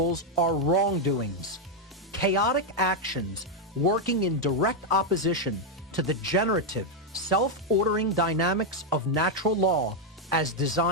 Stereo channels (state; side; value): normal; both; correlation 0.01